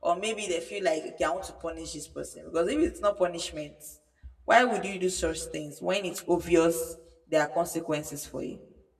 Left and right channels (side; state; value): both; identical; correlation 1.00